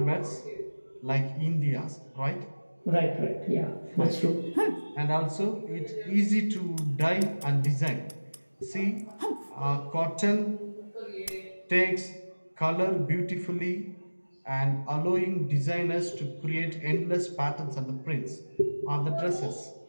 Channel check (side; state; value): both; inverted; correlation -1.00